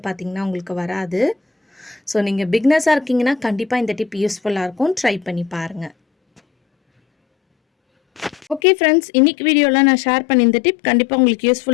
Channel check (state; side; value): drops out; right; at 8.6 s